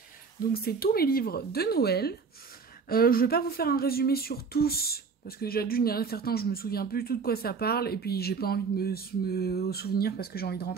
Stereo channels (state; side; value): quieter; left; 5.3 dB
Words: Donc c'est tous mes livres de Noël. Je vais pas vous faire un résumé sur tous, parce que déjà d'une, il y en a certains, je me souviens plus du tout de quoi ça parle, et puis j'ai pas envie de me souvenir, parce que j'ai envie de